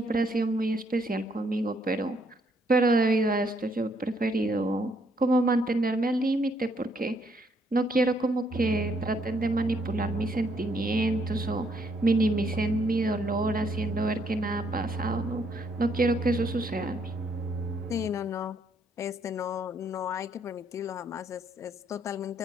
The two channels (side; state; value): both; normal; correlation 0.71